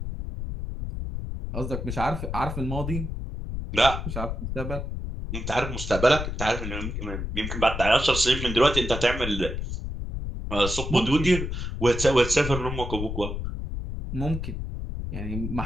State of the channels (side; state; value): left; noise; rumble, 5 dB below the sound